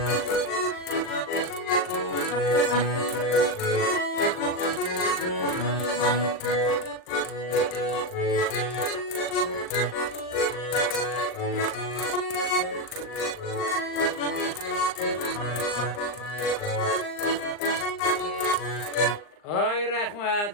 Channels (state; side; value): late; right; 39 ms